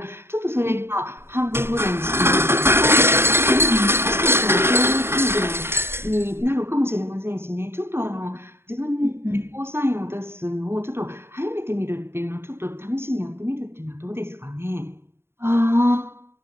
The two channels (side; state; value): left; late; 0.12 ms